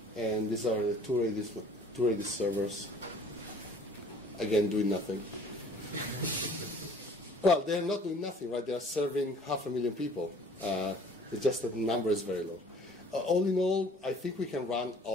And these are the two Redis servers, again doing nothing. Well, they're not doing nothing, right? They are serving 500,000 people. It's just that the number is very low. All in all, I think we can run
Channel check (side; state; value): both; normal; correlation 0.53